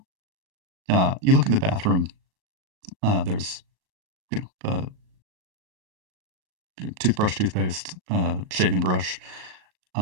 You look in the bathroom. There's uh, toothbrush, toothpaste, shaving brush.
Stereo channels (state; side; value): late; left; 38 ms